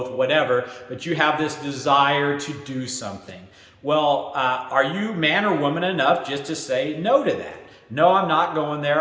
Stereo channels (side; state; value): both; identical; correlation 1.00